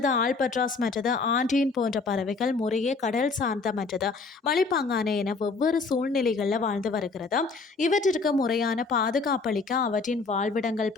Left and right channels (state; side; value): quieter; right; 4.2 dB